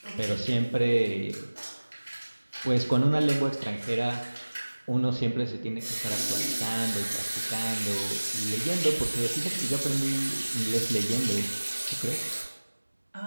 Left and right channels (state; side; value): inverted; both; correlation -1.00